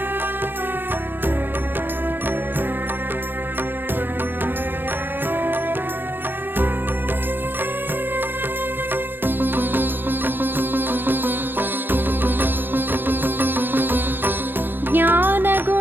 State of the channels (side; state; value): left; late; 0.097 ms